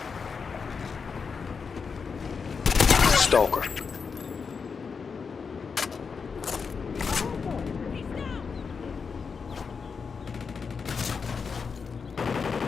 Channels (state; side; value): quieter; right; 5.5 dB